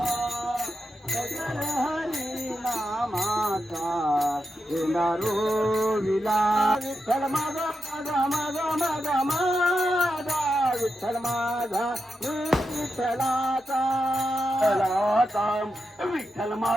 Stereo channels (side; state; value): both; normal; correlation 0.88